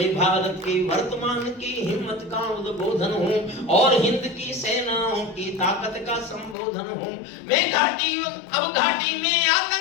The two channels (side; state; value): right; drops out; at 6.6 s